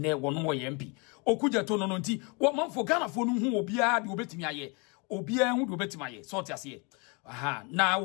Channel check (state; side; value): quieter; right; 31.6 dB